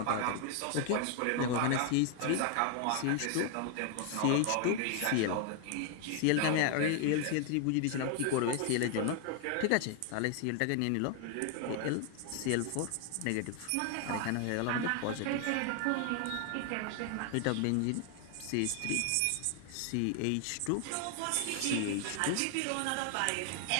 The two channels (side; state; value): both; different; correlation 0.00